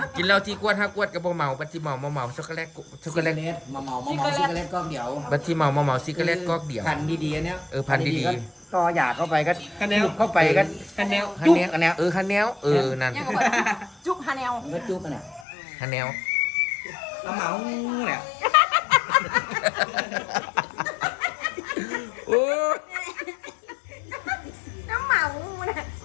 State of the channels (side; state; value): right; drops out; at 15.5 s